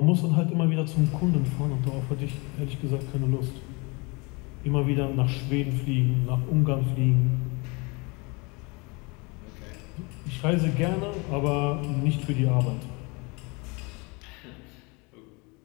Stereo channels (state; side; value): quieter; right; 28.4 dB